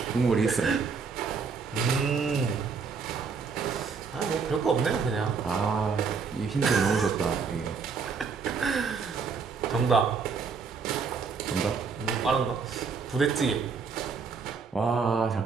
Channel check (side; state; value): left; quieter; 5.3 dB